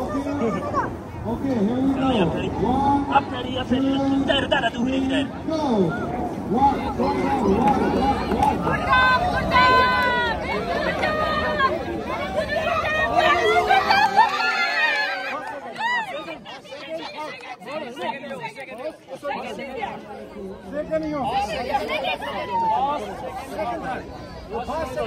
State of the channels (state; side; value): identical; both; correlation 1.00